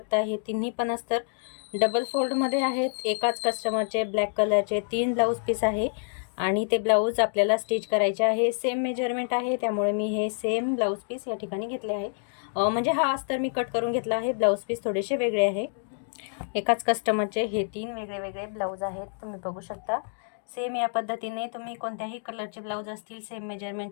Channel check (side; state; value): right; silent; digital silence